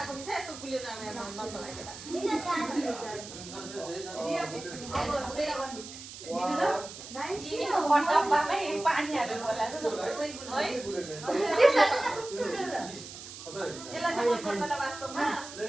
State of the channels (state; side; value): noise; right; hiss, 13 dB below the sound